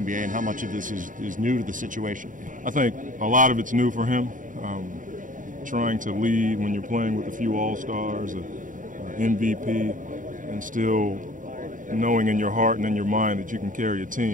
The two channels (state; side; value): late; left; 0.38 ms